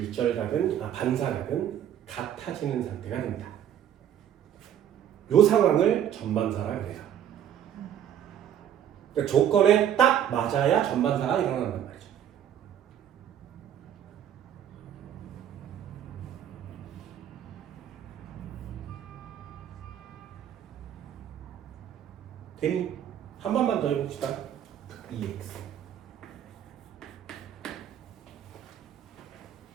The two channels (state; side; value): quieter; left; 10.0 dB